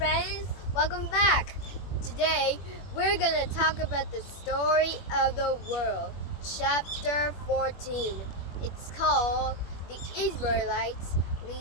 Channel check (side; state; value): right; late; 21 ms